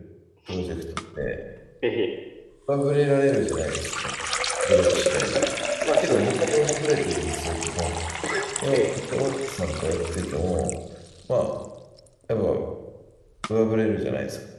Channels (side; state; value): both; identical; correlation 1.00